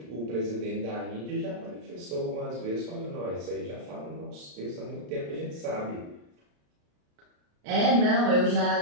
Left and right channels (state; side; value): late; left; 34 ms